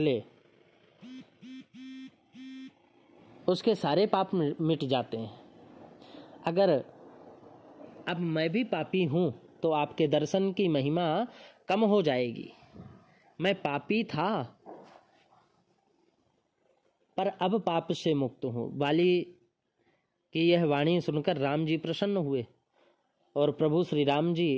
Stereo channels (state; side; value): identical; both; correlation 1.00